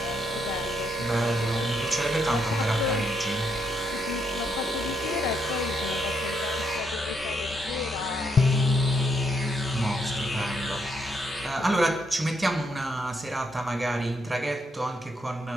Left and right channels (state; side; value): normal; both; correlation 0.76